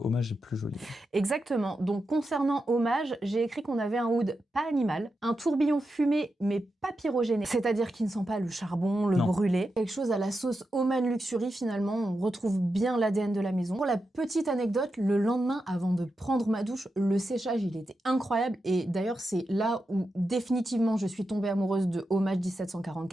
est plus joli. Exactement. Donc, concernant Hommage, j'ai écrit qu'on avait un oud pas animal, un tourbillon fumé, mais pas pyrogéné. C'est-à-dire qu'il ne sent pas le charbon, le brûlé. Quelque chose à la sauce Oman Luxury, finalement. On retrouve bien l'ADN de la maison. Pour la petite anecdote, le lendemain, avant de prendre ma douche, le séchage, il était incroyable. Et d'ailleurs, c'est là où, définitivement, je suis tombée amoureuse de Hommage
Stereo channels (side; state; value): both; normal; correlation 0.88